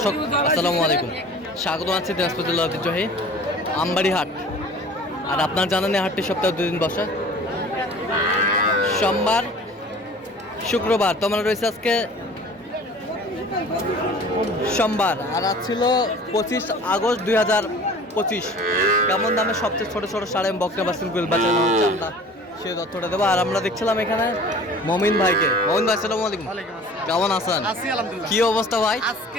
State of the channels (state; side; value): normal; both; correlation 0.45